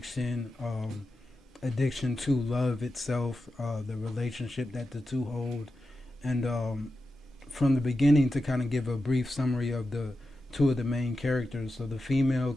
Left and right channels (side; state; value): both; normal; correlation 0.91